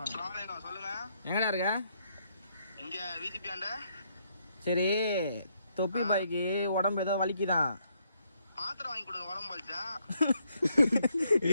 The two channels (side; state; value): both; inverted; correlation -0.74